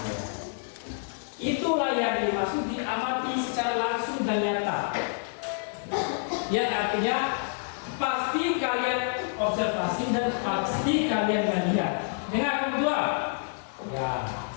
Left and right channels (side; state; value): right; silent; digital silence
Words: Itulah yang dimaksud diamati secara langsung dan nyata. Yang artinya pasti kalian observasi dan pasti kalian melihat. Dengan kedua, ya.